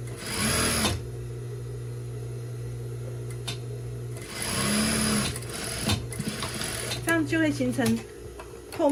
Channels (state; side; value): identical; both; correlation 1.00